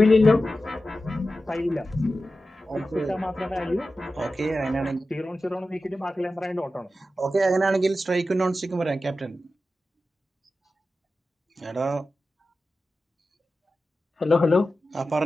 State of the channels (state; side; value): normal; both; correlation 0.93